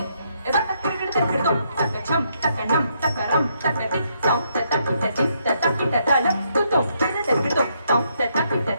edak kirkir dom takka jam takka nam ram takka tik tom takka tik takka tala kutom takka tom takka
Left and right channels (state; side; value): inverted; both; correlation -0.75